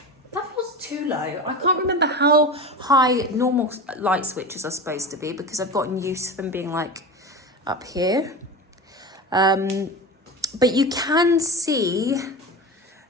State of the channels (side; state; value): both; normal; correlation 0.27